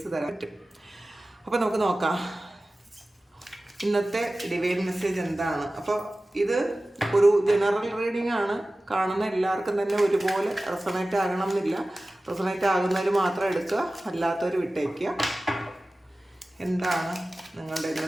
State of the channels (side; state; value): both; normal; correlation 0.96